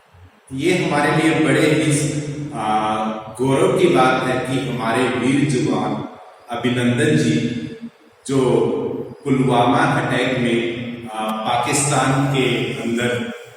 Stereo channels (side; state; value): both; identical; correlation 1.00